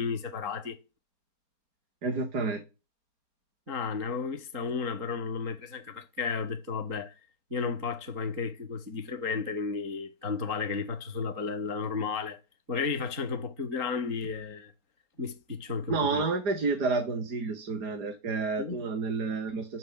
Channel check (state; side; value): late; left; 4.3 ms